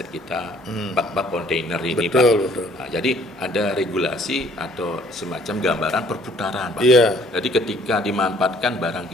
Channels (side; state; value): both; normal; correlation 0.59